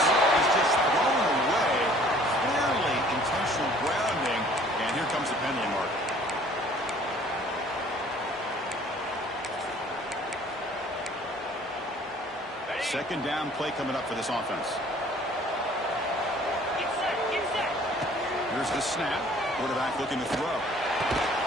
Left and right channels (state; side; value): normal; both; correlation 0.54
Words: is just thrown away. Clearly intentional grounding. And here comes the penalty mark. Second down play coming up for this offense. Here's the snap. Quarterback looking to throw.